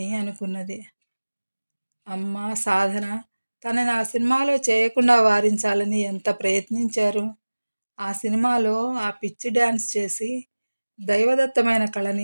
అనుకున్నది. అమ్మ, సాధన తనని ఆ సినిమాలో చేయకుండా వారించాలని ఎంత ప్రయత్నించారు. ఆ సినిమాలో ఆ పిచ్చి డ్యాన్స్ చేసి దైవదత్తమైన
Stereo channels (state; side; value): inverted; both; correlation -1.00